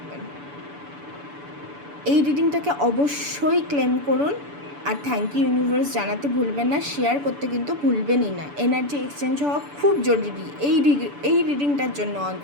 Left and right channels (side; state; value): left; late; 6.9 ms